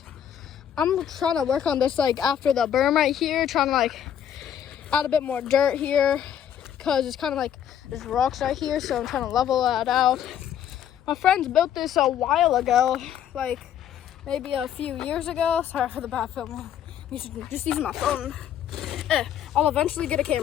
I'm trying to work on this like after the berm right here, trying to like add a bit more dirt here, because it's kind of like there's rocks right here, so I'm trying to level that out. My friends built this a while ago, like maybe a few years ago. Sorry for the bad filming. Just using my phone. I'll eventually get a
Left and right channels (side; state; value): right; quieter; 9.7 dB